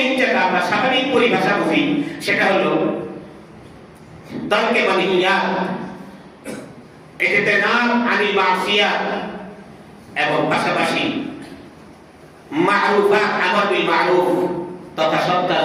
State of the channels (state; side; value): identical; both; correlation 1.00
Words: যেটা আমরা স্বাভাবিক পরিভাষা বুঝি, সেটা হলো তারকে মানহিয়াত, এটাতে নাম আনিল মাসিয়াত, এবং পাশাপাশি মারুফাত, আমর বিল মারুফ তথা সৎ